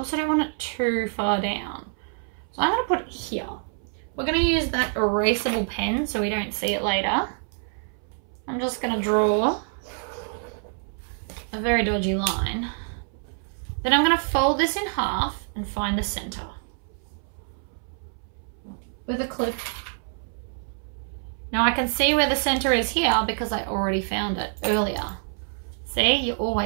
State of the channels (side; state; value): left; silent; 61 dB below the other